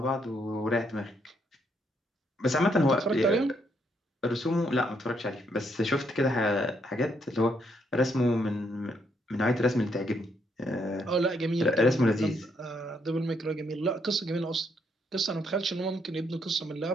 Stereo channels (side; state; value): both; normal; correlation 0.74